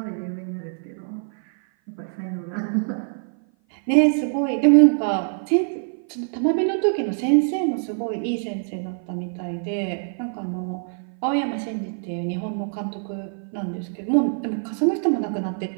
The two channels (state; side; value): silent; left; 56 dB below the other